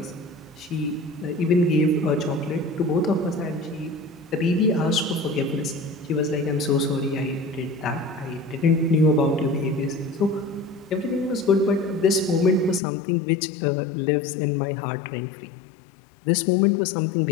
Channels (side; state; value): right; drops out; at 12.8 s